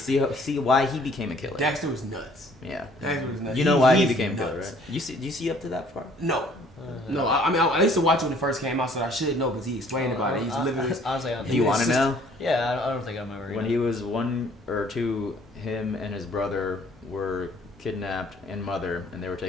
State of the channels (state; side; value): normal; both; correlation 0.58